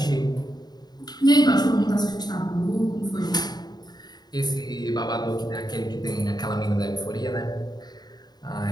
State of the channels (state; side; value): late; right; 0.20 ms